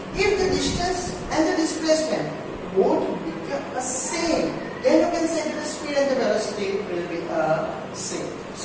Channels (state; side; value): identical; both; correlation 1.00